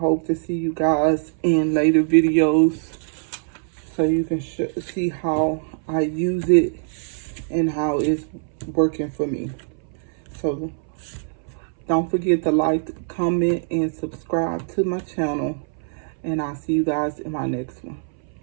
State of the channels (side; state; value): left; silent; 61 dB below the other